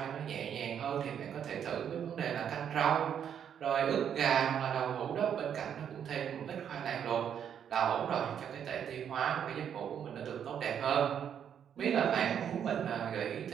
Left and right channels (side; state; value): left; quieter; 8.6 dB